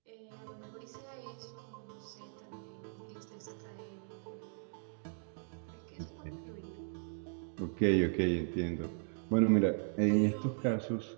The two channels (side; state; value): left; silent; digital silence